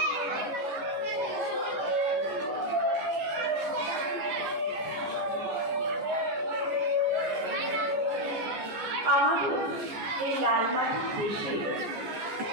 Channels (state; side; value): late; left; 14 ms